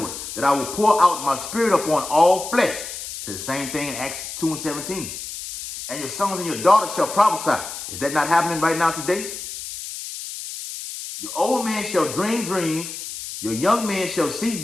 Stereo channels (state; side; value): noise; left; hiss, 9 dB below the sound